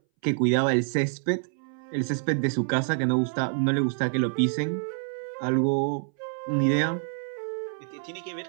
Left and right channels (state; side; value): silent; left; 60 dB below the other